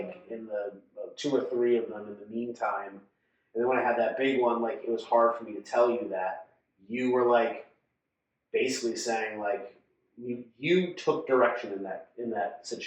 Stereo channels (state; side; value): identical; both; correlation 1.00